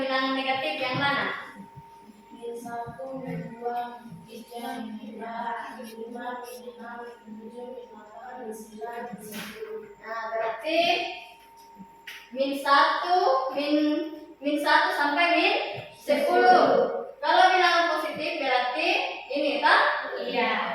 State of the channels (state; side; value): identical; both; correlation 1.00